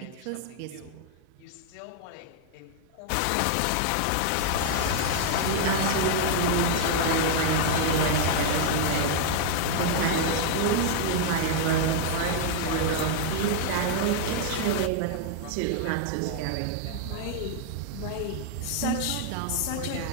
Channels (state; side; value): different; both; correlation 0.00